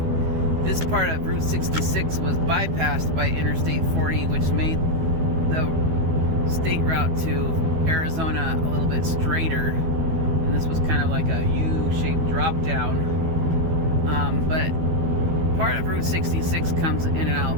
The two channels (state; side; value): late; left; 12 ms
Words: This part of Route 66 was bypassed by Interstate 40, which made the state route to Arizona a little bit straighter. And this was kind of like a U-shaped drop down. But part of Route 66 comes in and out.